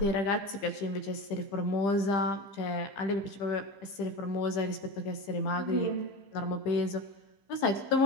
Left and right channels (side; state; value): right; late; 15 ms